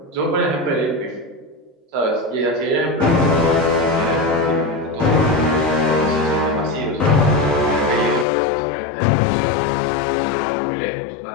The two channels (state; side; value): drops out; right; at 8.2 s